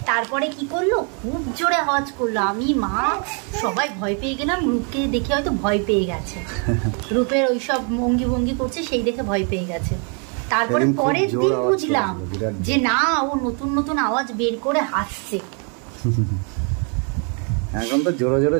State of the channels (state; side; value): quieter; left; 38.8 dB